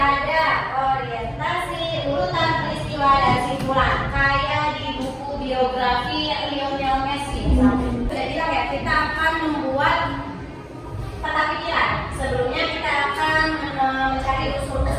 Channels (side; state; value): both; identical; correlation 1.00